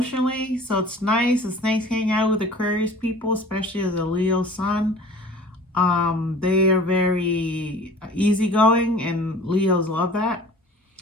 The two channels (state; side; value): normal; both; correlation 0.45